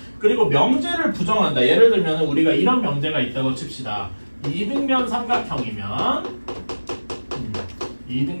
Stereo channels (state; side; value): inverted; both; correlation -1.00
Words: 그리고 명제를 부정한다. 예를 들면 우리가 이런 명제가 있다고 칩시다. 이등변 삼각형이면